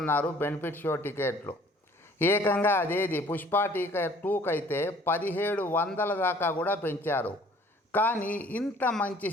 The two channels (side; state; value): both; normal; correlation 0.55